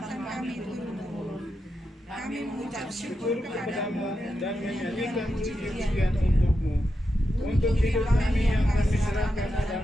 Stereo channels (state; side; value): normal; both; correlation 0.87